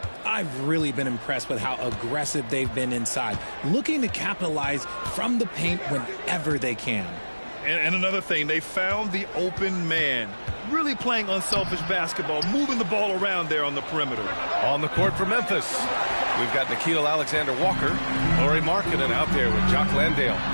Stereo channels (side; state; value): both; inverted; correlation -1.00